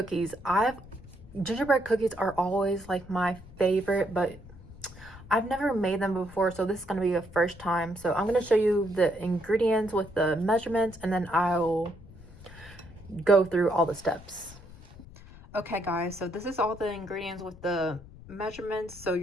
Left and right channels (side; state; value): left; noise; rumble, 19 dB below the sound